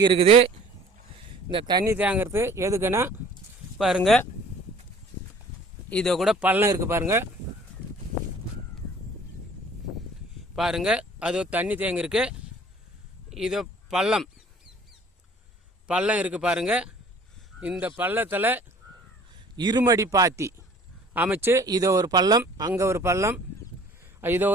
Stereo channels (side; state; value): both; normal; correlation 0.51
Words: இருக்குது. இந்த தண்ணி தேங்கிறது எதுக்குன்னா பாருங்கள், இதை கூட பள்ளம் இருக்குது பாருங்கள், பாருங்கள் அது தண்ணி தேங்கிருக்கு. இது பள்ளம் இருக்குது பாருங்கள். இந்த பள்ளத்தில் இருமடி பாத்தி அமைச்சு இதோ ஒரு பள்ளம், அங்கே ஒரு பள்ளம், இதோ